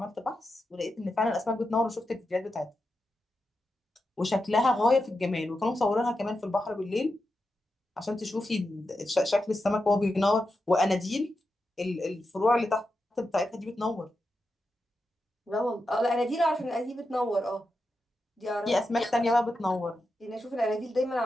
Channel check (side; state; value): both; normal; correlation 0.88